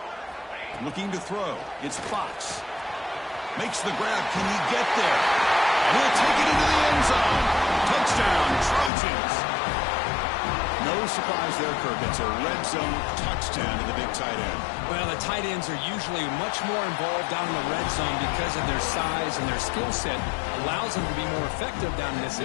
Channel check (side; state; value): right; drops out; at 8.9 s